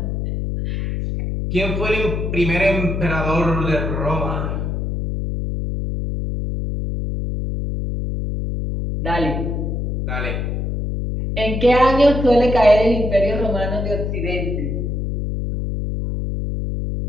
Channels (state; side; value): noise; left; hum, 2 dB below the sound